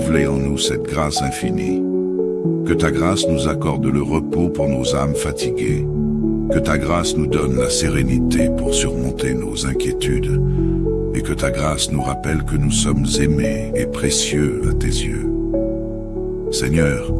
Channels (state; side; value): identical; both; correlation 1.00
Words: en nous cette grâce infinie. Que ta grâce nous accorde le repos pour nos âmes fatiguées. Que ta grâce nous donne la sérénité pour surmonter nos inquiétudes. Et que ta grâce nous rappelle que nous sommes aimés et précieux à tes yeux. Seigneur,